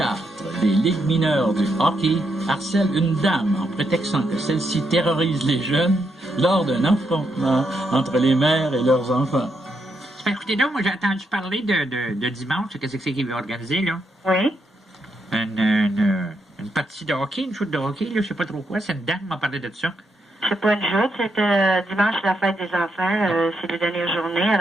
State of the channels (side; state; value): both; normal; correlation 0.80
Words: des ligues mineures du hockey harcèle une dame en prétextant que celle-ci terrorise les jeunes lors d'un affrontement entre les mères et leurs enfants. Écoutez donc, moi j'ai entendu parler de dimanche, qu'est-ce que c'est qu'il veut organiser, là? Oui. Une partie de hockey, une shoot de hockey, là, je sais pas trop quoi, c'est une dame qui m'a parlé de ça. C'est pas une joute, c'est dimanche, la fête des enfants, c'est la dernière journée,